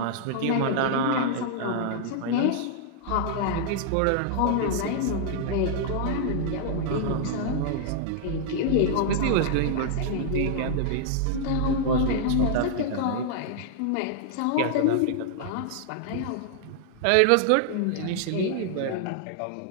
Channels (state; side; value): different; both; correlation -0.01